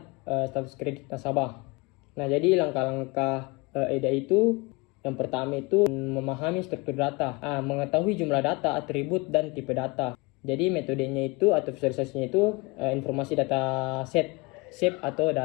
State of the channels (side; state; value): right; quieter; 25.9 dB